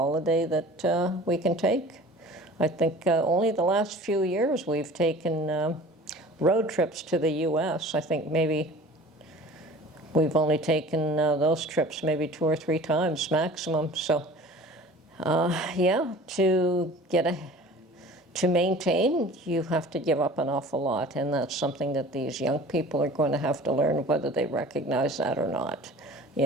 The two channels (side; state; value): both; normal; correlation 0.43